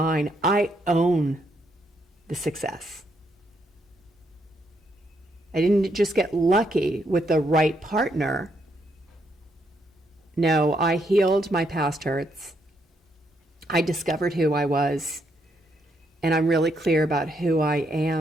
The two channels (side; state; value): both; normal; correlation 0.75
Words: I own the success. I didn't just get lucky with the right partner. No, I healed my past hurts. I discovered who I was, and I'm really clear about who I